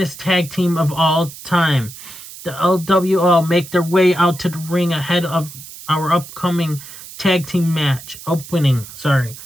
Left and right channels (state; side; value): noise; right; hiss, 15 dB below the sound